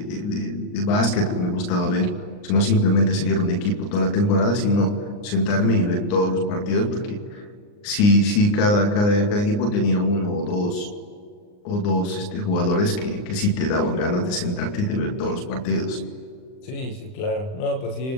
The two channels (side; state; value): right; late; 39 ms